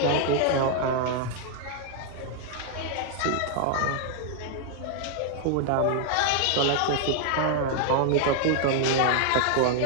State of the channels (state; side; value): different; both; correlation 0.00